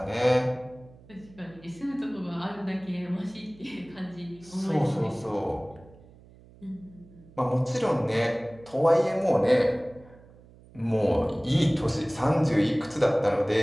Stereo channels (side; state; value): right; noise; hum, 24 dB below the sound